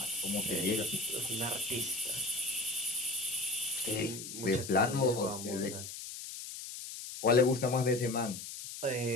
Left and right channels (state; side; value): noise; left; hiss, 9 dB below the sound